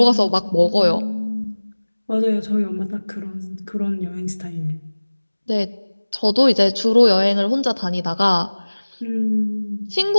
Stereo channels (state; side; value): inverted; both; correlation -1.00